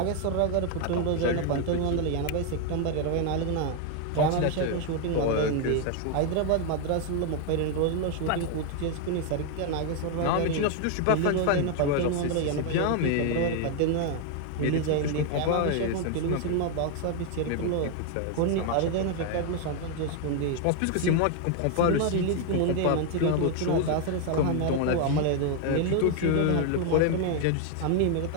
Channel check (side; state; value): both; different; correlation 0.00